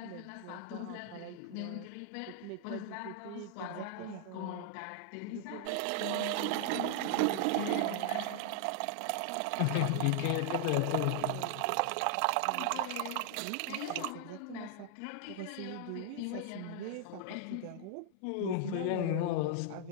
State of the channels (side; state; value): both; different; correlation 0.00